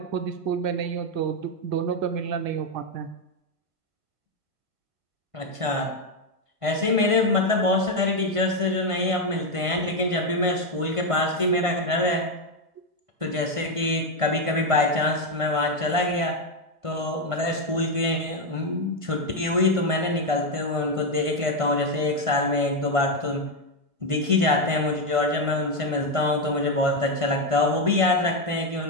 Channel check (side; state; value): left; late; 1.5 ms